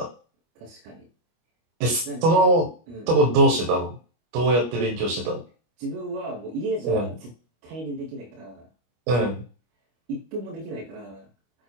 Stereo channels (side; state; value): left; late; 25 ms